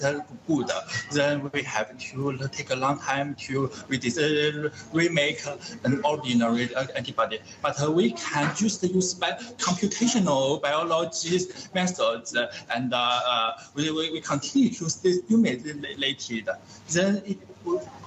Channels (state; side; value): identical; both; correlation 1.00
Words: good, then we have to take a long time to remake an ordinary antibody. But we can just use computational biology methods, and we continue to stimulate it. Then